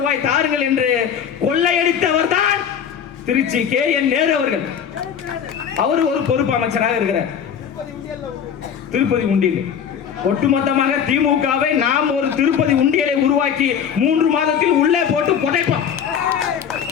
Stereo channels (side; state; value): right; quieter; 8.0 dB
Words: தாருங்கள் என்று கொள்ளையடித்தவர் தான் திருச்சி கேஎன் நேரு அவர்கள். அவர் ஒரு பொறுப்பு அமைச்சராக இருக்கிறார். திருப்பதி உண்டியல், ஒட்டுமொத்தமாக திமுகவை நாம் ஒரு திருப்பதி உண்டியலை உருவாக்கி 3 மாதத்தில் உள்ளே போட்டு புதைப்போம்.